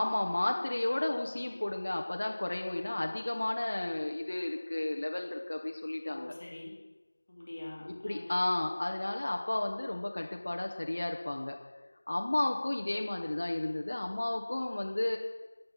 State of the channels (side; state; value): both; inverted; correlation -1.00